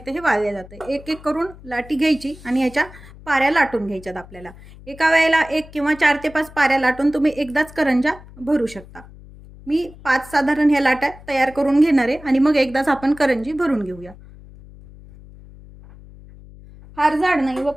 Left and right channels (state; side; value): noise; left; hum, 20 dB below the sound